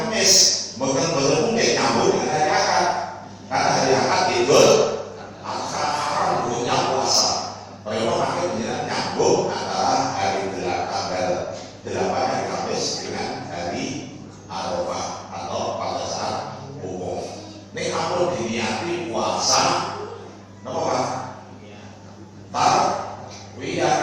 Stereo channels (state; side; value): identical; both; correlation 1.00